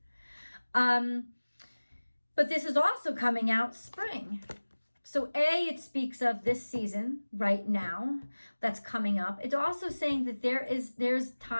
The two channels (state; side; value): inverted; both; correlation -1.00